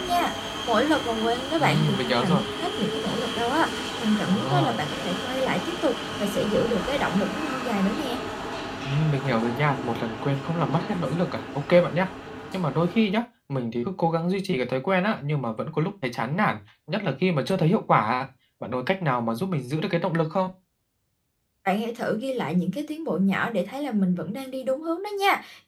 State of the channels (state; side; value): identical; both; correlation 1.00